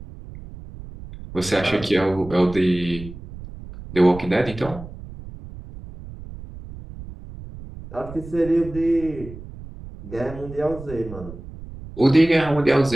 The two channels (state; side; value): noise; right; rumble, 14 dB below the sound